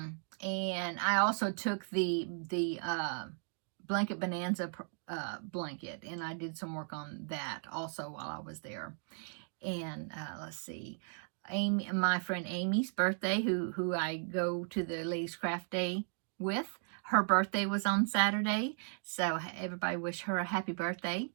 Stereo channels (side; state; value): left; silent; 54 dB below the other